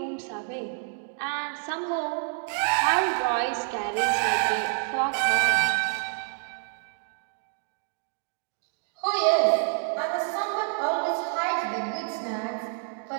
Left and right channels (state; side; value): silent; left; 59 dB below the other